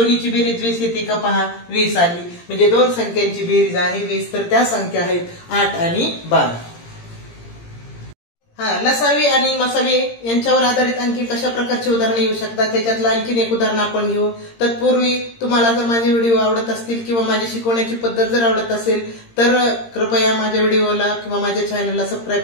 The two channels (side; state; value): right; late; 17 ms